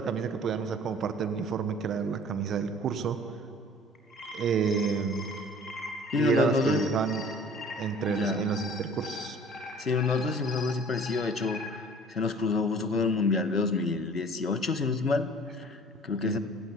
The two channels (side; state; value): both; normal; correlation 0.49